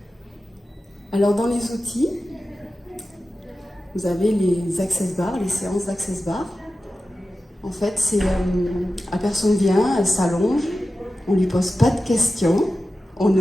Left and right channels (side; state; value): both; normal; correlation 0.94